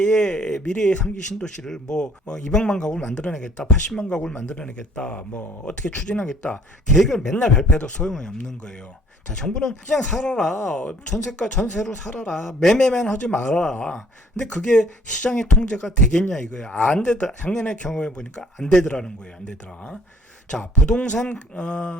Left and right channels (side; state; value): both; normal; correlation 0.59